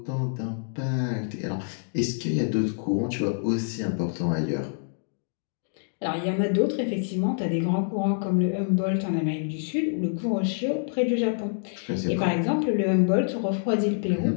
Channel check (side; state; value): right; silent; digital silence